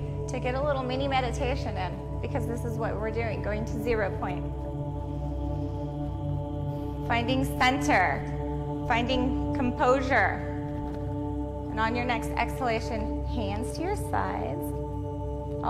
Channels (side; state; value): both; identical; correlation 1.00